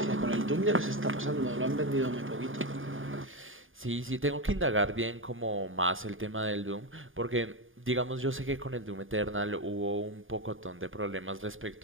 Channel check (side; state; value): left; late; 0.58 ms